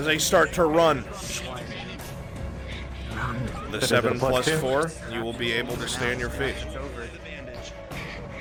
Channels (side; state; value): both; identical; correlation 1.00